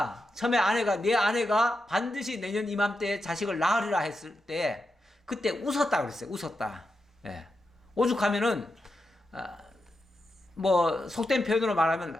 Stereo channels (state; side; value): normal; both; correlation 0.87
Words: 처음에 내 아내가 반드시 내년 이맘때에 자식을 낳으리라 했을 때 그때 웃었다 그랬어요. 웃었다. 예. 오죽하면은 뭐 속된 표현으로